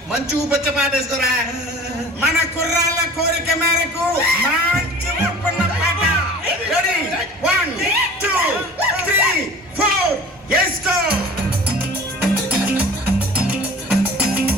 మంచి ఊపచ్చ పాట వేసుకోరా. మన కుర్రాళ్ళ కోరిక మేరకు మంచి ఊపున్న పాట. రెడీ 1 2 3 4 వేసుకో.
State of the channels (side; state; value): both; normal; correlation 0.43